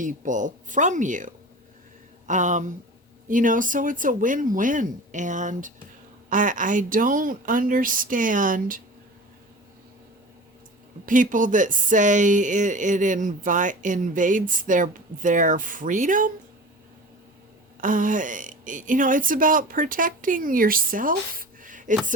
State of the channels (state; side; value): normal; both; correlation 0.36